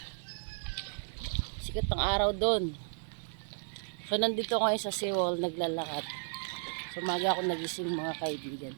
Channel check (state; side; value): silent; left; 55 dB below the other